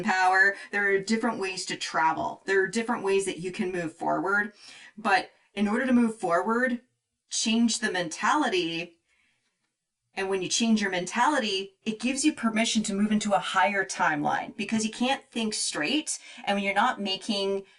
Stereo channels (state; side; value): identical; both; correlation 1.00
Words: power. There are different ways to travel. There are different ways that you can move forward. But in order to move forward, change the mentality. And when you change your mentality, it gives you permission to move into a higher timeline, because you can't think straight. And when you're not making